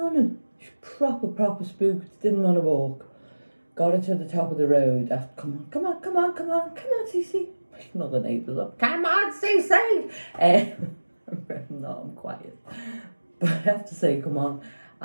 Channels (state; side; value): inverted; both; correlation -1.00